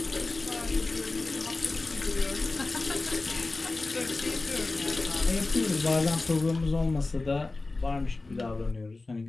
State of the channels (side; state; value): right; quieter; 3.4 dB